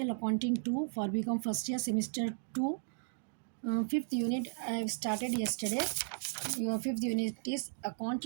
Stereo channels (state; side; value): silent; left; digital silence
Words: Accounting 2 for BCom first year semester 2. Fifth unit I have started yesterday. Your fifth unit is